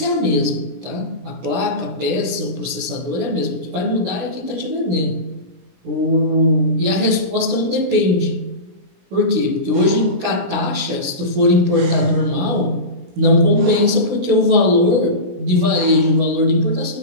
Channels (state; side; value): late; left; 16 ms